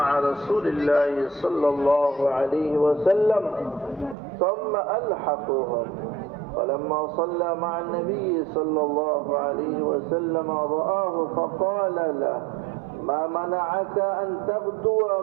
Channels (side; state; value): left; drops out; at 4.2 s